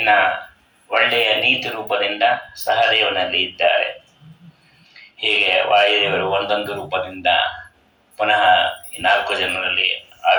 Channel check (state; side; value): identical; both; correlation 1.00